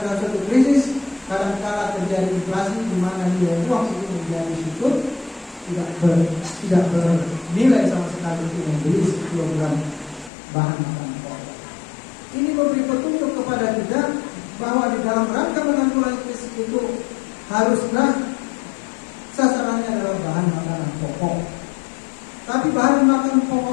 dalam suatu krisis kadang-kala terjadi inflasi di mana nilai uang itu menjadi syukur, tidak bernilai sama sekali untuk membeli kilogram bahan makanan pokok. Ini memberi petunjuk kepada kita bahwa di dalam rangka menanggulangi krisis itu haruslah sasarannya adalah bahan makanan pokok. Tapi bahan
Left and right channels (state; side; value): drops out; right; at 10.3 s